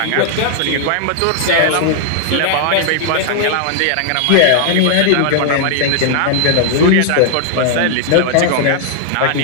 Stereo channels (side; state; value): both; different; correlation 0.00